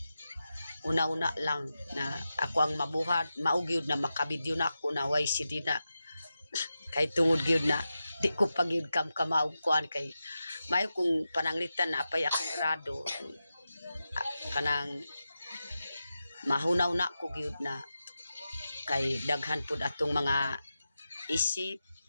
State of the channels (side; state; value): both; inverted; correlation -0.91